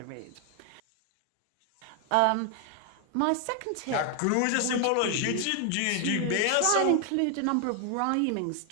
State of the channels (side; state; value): both; different; correlation 0.00